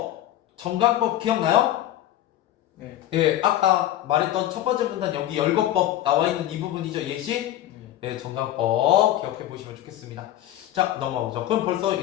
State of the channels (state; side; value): quieter; right; 13.2 dB